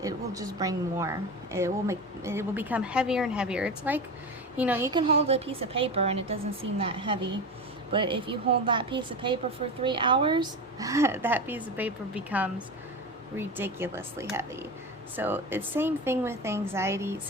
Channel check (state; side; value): normal; both; correlation 0.24